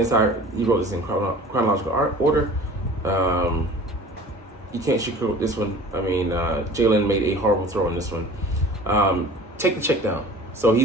he wrote this in chronological order, you can't sugarcoat this one. I mean, Jalen made a horrible throw on this one. Take the check down. So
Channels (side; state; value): both; normal; correlation 0.43